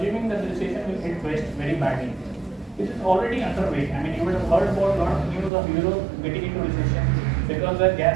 that the recession will hit West very badly. This is already underway. I mean, you would have heard about a lot of news of Europe getting into recession because their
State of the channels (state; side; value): drops out; left; at 5.5 s